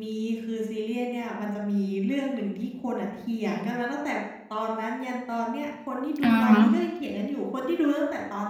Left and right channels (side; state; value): both; identical; correlation 1.00